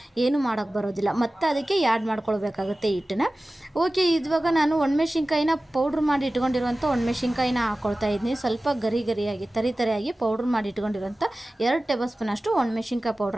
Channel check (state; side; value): normal; both; correlation 0.96